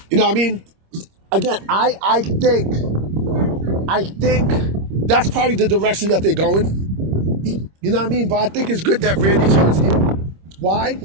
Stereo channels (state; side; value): late; left; 26 ms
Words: know what I mean? Again, I think that's probably the direction that they're going. You know what I mean? But I think it's good that Randy turns heel. Why?